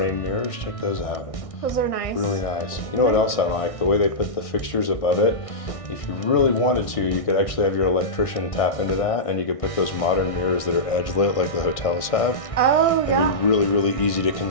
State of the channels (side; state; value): right; late; 1.6 ms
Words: mirrors. Check those out. Those are nice. Really nice. You know what else I like? The way they put the fixtures above it. If you really wanted to, you could actually have your electrician tap into that, and you could put those modern mirrors that are edge lit like the hotels have. Oh It'd yeah. be really, really easy to